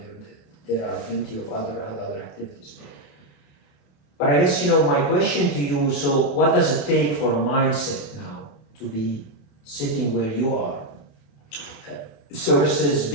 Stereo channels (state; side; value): late; right; 28 ms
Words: are plenty of other activities. But I guess my question to you, so what does it take for a mindset now to be sitting where you are, versus